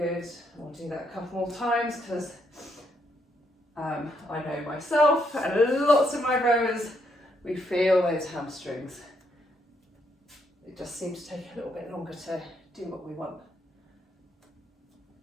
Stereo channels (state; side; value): normal; both; correlation 0.75